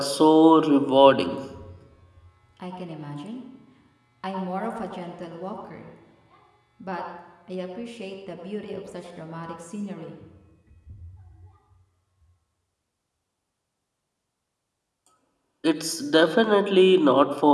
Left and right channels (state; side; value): identical; both; correlation 1.00